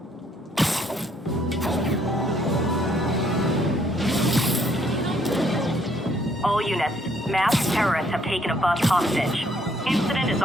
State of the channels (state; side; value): normal; both; correlation 0.67